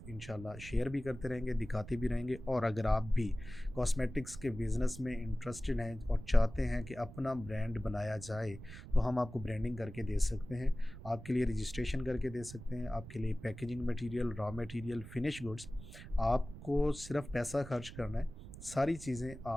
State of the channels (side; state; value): right; noise; rumble, 14 dB below the sound